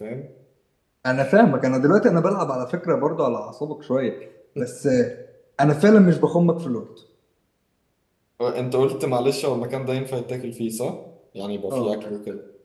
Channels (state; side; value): identical; both; correlation 1.00